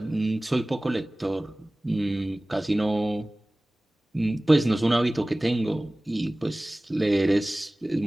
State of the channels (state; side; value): normal; both; correlation 0.98